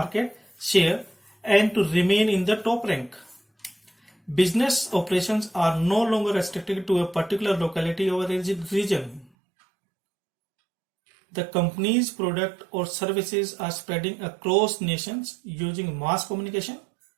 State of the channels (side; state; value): left; drops out; at 9.3 s